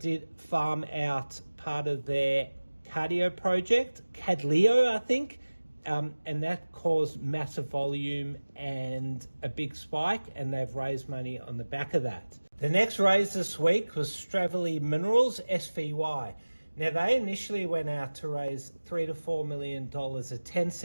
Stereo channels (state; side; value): inverted; both; correlation -1.00